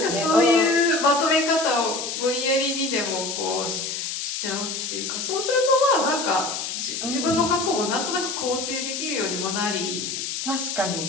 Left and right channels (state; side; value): noise; left; hiss, 4 dB below the sound